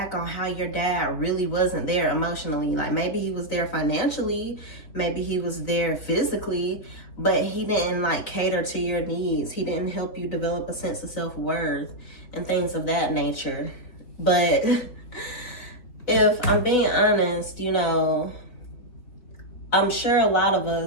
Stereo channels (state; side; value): late; right; 3.6 ms